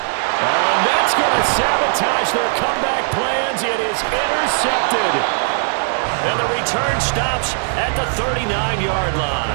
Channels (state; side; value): silent; left; 62 dB below the other